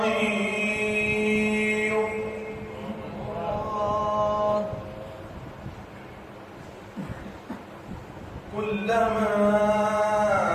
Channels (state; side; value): identical; both; correlation 1.00